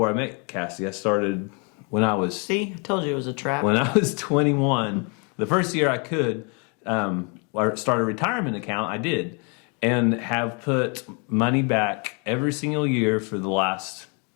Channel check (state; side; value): quieter; right; 34.8 dB